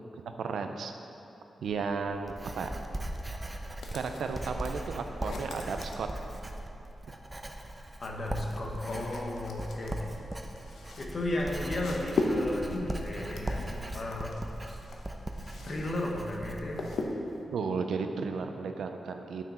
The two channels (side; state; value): both; normal; correlation 0.84